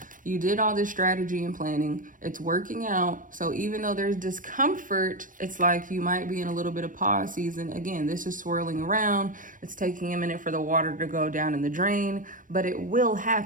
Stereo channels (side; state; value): left; late; 0.39 ms